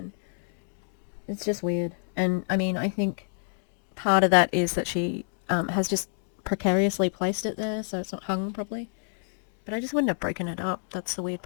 it's just weird. And I mean, I think part of that is that she has just precariously placed it there, so it's not hung properly. But I just wouldn't have broken it up. That's the weird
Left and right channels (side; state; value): right; silent; digital silence